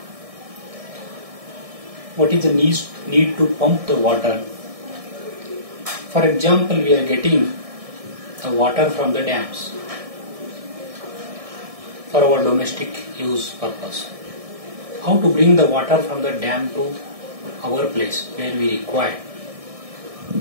What is the need to pump the water? For example, we are getting the water from the dams for our domestic use purpose. How to bring the water from the dam to our place where we require?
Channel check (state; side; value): late; left; 1.6 ms